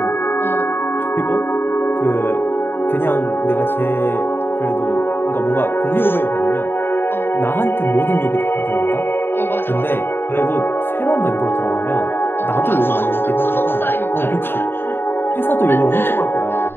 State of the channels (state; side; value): late; right; 0.10 ms